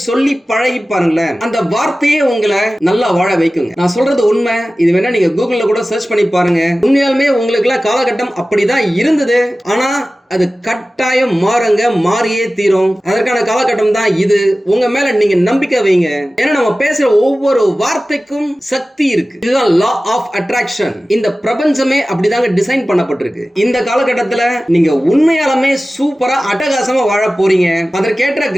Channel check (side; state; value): both; normal; correlation 0.96